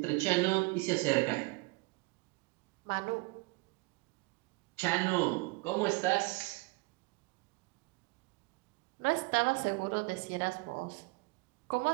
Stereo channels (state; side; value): quieter; left; 26.6 dB